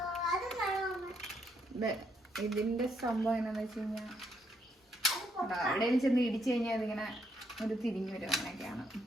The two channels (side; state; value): both; normal; correlation 0.75